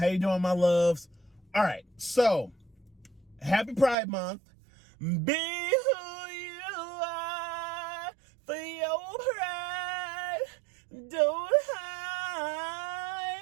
you doing, my loves? All right, so happy Pride Month. Be who you are for your pride. Don't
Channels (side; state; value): left; drops out; at 4.0 s